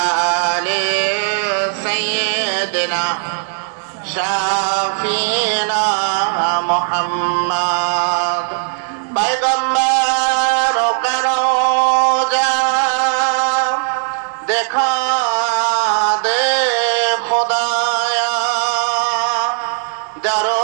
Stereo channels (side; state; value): left; silent; 68 dB below the other